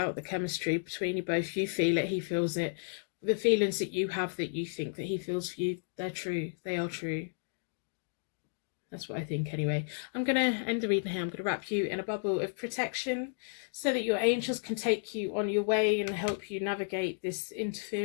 The chemistry between you both. You feel it. He feels it. The feelings that you have, that you think that he feels for you, they're true. They are true. That's what I think anyway. I'm going to end the reading here. I'm going to wrap you in a bubble of protection so that your angels can take you on your way and help you navigate this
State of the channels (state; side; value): silent; right; digital silence